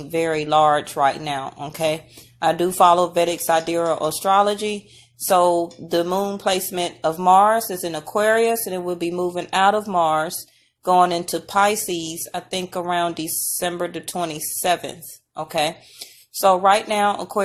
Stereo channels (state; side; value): identical; both; correlation 1.00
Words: very large right now, okay? I do follow Vedic Astrology, so the moon placement of Mars is in Aquarius, and it will be moving out of Mars, going into Pisces, I think around December the 27th, okay? So right now,